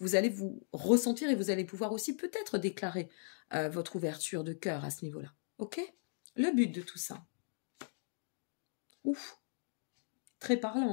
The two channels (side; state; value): right; silent; digital silence